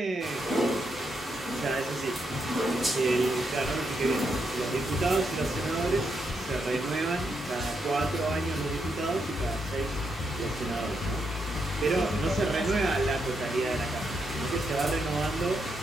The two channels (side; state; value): both; normal; correlation 0.81